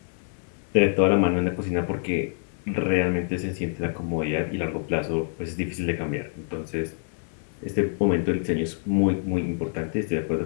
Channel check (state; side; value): silent; right; 61 dB below the other